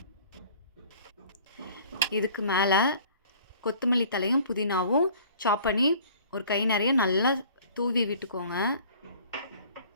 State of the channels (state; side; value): inverted; both; correlation -0.51